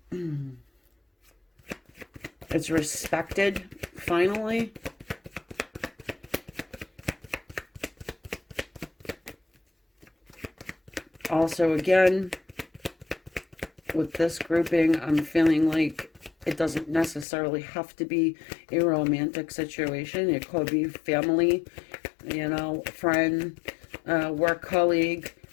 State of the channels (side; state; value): right; drops out; at 17.2 s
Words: It's respected, finally. Also, again, with this grouping, I'm feeling like it doesn't necessarily have to be a romantic situation. It could be family, friend, work colleague.